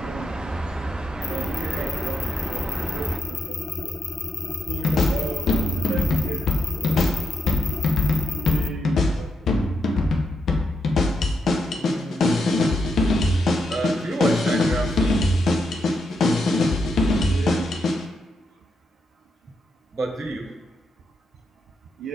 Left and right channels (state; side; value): normal; both; correlation 0.83